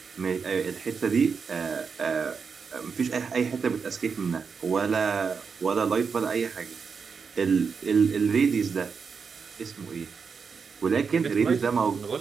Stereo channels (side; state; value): left; quieter; 5.7 dB